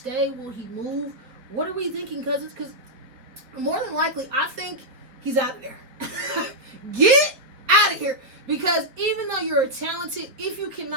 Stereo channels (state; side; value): late; left; 4.6 ms